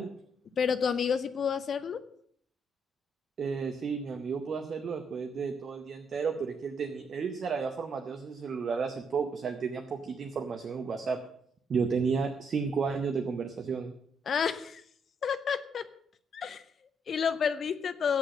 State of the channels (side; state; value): both; normal; correlation 0.73